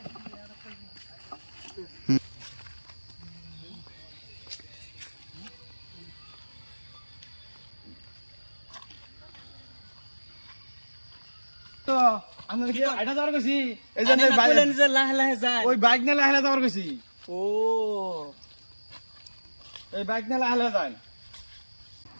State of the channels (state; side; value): inverted; both; correlation -1.00